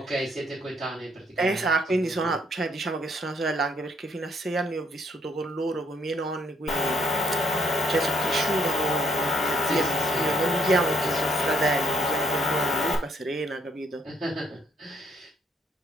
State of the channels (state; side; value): normal; both; correlation 0.69